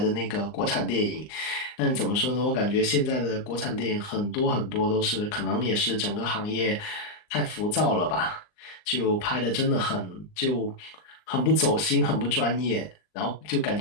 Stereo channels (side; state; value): right; late; 39 ms